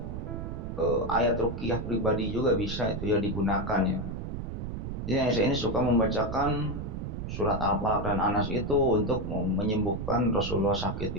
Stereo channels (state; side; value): noise; right; rumble, 5 dB below the sound